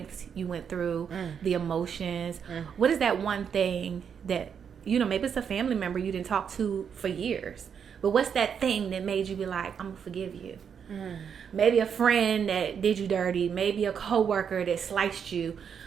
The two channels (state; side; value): quieter; left; 7.3 dB